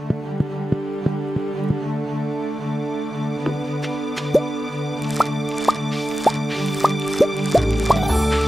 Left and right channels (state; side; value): normal; both; correlation 0.93